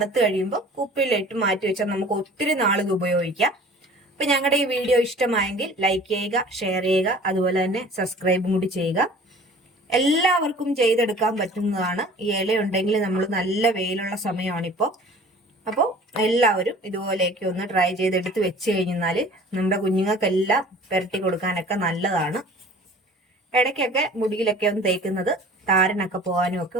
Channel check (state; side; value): normal; both; correlation 0.46